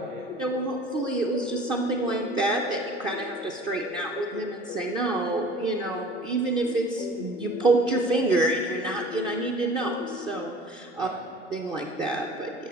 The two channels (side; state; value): both; normal; correlation 0.45